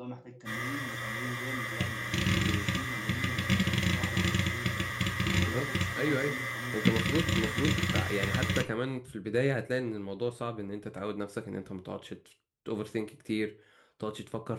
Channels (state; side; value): identical; both; correlation 1.00